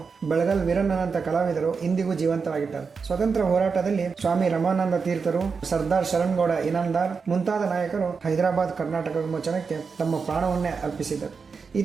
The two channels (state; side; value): quieter; left; 5.3 dB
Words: ಬೆಳಗಲ್ ವೀರಣ್ಣನಂತ ಕಲಾವಿದರು ಇಂದಿಗೂ ಜೀವಂತವಾಗಿದ್ದಾರೆ. ಸ್ವತಂತ್ರ ಹೋರಾಟದಲ್ಲಿ ಸ್ವಾಮಿ ರಮಾನಂದ ತೀರ್ಥರು, ಸರ್ದಾರ್ ಶರಣ್ಗೌಡ ಇನಾಮದಾರ್ ಮುಂತಾದ ನಾಯಕರು ಹೈದರಾಬಾದ್ ಕರ್ನಾಟಕ ವಿಮೋಚನಕ್ಕೆ ತಮ್ಮ ಪ್ರಾಣವನ್ನೇ ಅರ್ಪಿಸಿದರು.